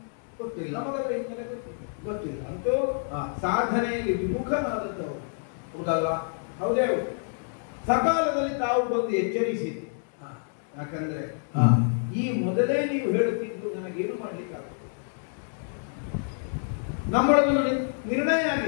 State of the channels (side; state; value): right; silent; digital silence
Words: ಗೊತ್ತಿಲ್ಲ, ನಮಗದ ಹಿನ್ನೆಲೆ ಗೊತ್ತಿಲ್ಲ. ಅಂತೂ ಸಾಧನೆಯಲ್ಲಿ ವಿಮುಖನಾದದ್ದವರು ಹೌದಲ್ಲ? ಹೌದೇ. ಸಕಾಲದಲ್ಲಿ ತಾವು ಬಂದು ಎಚ್ಚರಿಸಿದ್ದು. ಯಾಕಂದ್ರೆ ಈ ಮೊದಲೇ ನೀವು ಹೇಳುತ್ತಿದ್ದು ನನಗೇನು ಮಾಡ್ಲಿಕ್ಕಾಗುತ್ತೆ. ನಮ್ಮೊಳಗೊಂದು ನಿರ್ಣಯ